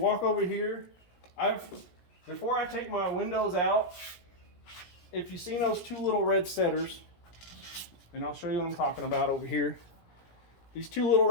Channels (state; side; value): late; right; 17 ms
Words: over here, before I take my windows out, if you've seen those two little red setters, and I'll show you what I'm talking about over here. These two little